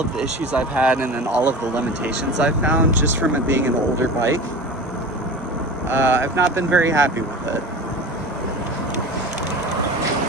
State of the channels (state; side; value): normal; both; correlation 0.33